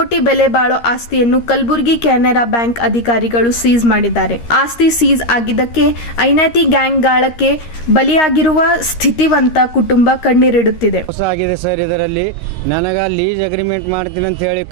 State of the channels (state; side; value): late; right; 13 ms